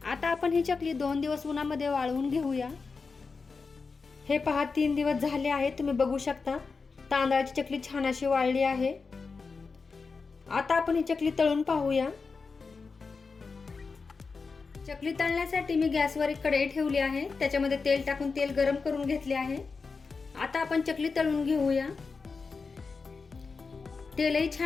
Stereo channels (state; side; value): quieter; right; 4.6 dB